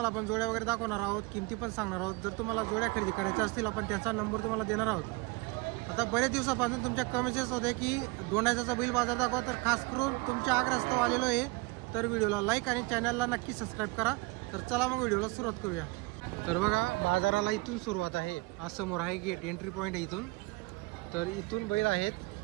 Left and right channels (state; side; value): quieter; left; 23.8 dB